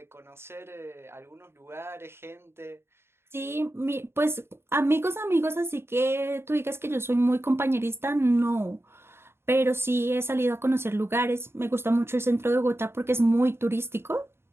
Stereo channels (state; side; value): late; left; 0.12 ms